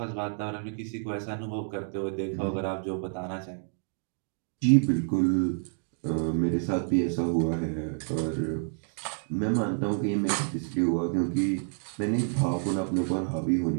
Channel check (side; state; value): left; silent; 57 dB below the other